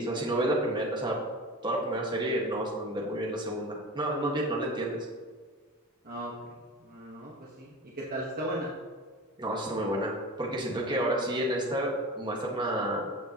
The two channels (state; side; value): normal; both; correlation 0.33